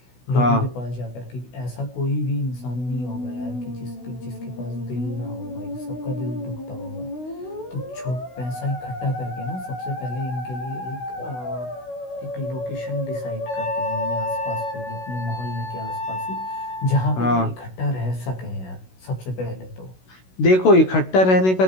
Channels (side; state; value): right; late; 16 ms